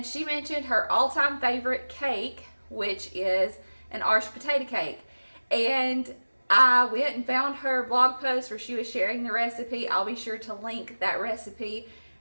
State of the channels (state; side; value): inverted; both; correlation -1.00